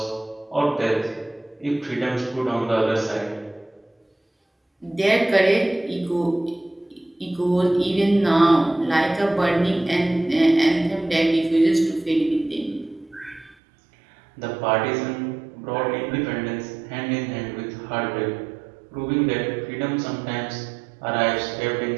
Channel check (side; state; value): left; drops out; at 13.6 s